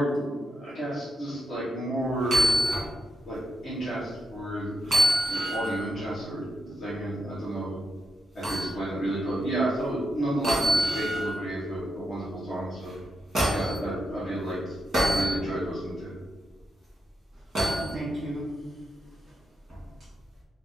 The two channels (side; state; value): both; normal; correlation 0.84